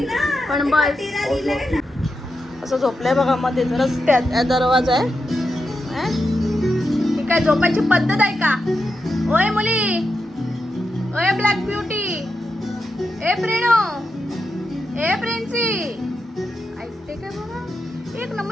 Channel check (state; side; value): normal; both; correlation 0.87